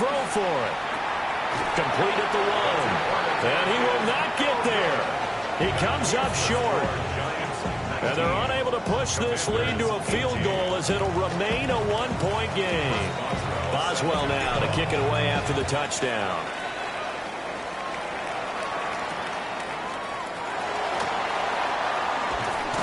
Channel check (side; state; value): both; identical; correlation 1.00